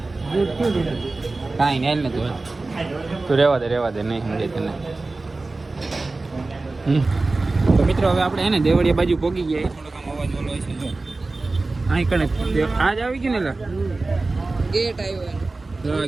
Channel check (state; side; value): quieter; left; 3.4 dB